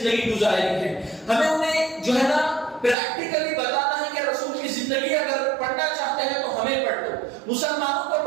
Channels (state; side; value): drops out; left; at 3.0 s